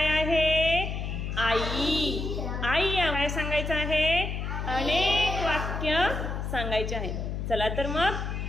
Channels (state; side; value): noise; left; hum, 4 dB below the sound